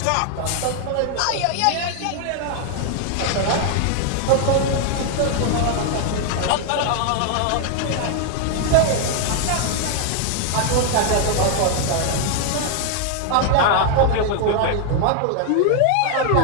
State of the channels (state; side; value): different; both; correlation 0.00